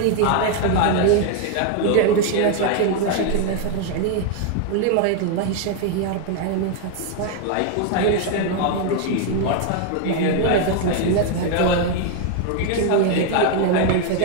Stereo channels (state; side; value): different; both; correlation 0.00